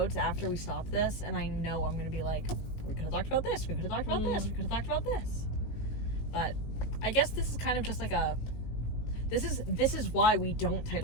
after we stop this, and I know I'm gonna be like, we could have talked about this, we could have talked about this, we could have talked about this. But I guess this is kind of just like a. This is why we don't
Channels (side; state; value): right; late; 19 ms